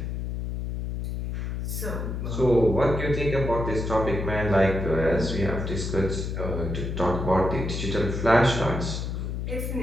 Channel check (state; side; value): noise; left; hum, 3 dB below the sound